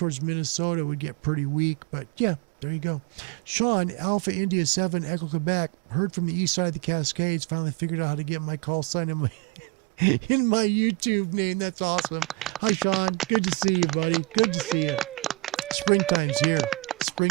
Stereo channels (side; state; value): left; quieter; 21.3 dB